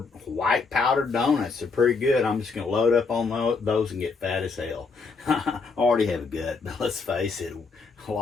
white powdered donuts. They're pretty good. I'm just going to load up on those and get fat as hell. I already have a gut, but let's face it, a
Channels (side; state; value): right; quieter; 4.5 dB